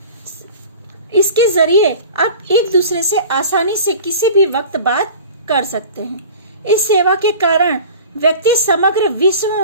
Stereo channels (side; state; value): both; inverted; correlation -0.40